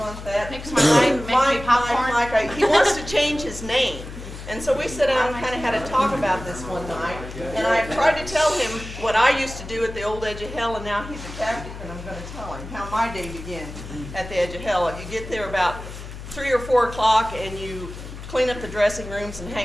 that. Mix my life, make me popcorn. Mike. He wants to change his name. And so we sat down and kind of had a talk about this one night, and I tried to tell him what I used to do at the old Edge of Hell, and now he's a tactic, and I'm going to tell him how my day began at the Edge of Hell. You get there about 3 or 4 o'clock, and you clean up the dressing rooms and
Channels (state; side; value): noise; left; hum, 11 dB below the sound